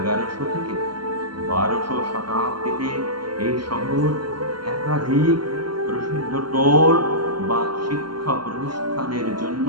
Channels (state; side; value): late; left; 0.72 ms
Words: থেকে 1200 শতাব্দীতে এই শহর একাধিক প্রসিদ্ধ টোল বা শিক্ষা প্রতিষ্ঠানের জন্য